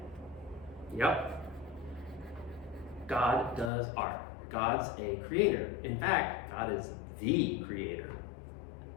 Yep. God does art. God's a creator. In fact, God is the creator.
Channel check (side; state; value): right; drops out; at 3.7 s